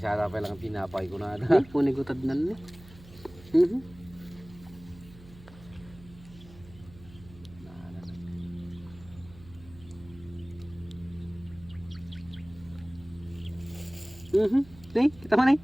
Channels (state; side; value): noise; right; hum, 20 dB below the sound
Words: sana pa lang pinapay ko na ata. Hindi, punigutad na ni. Nih, kita mana nih?